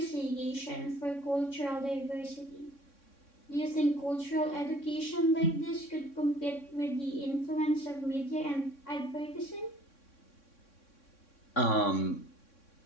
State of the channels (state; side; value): late; right; 3.6 ms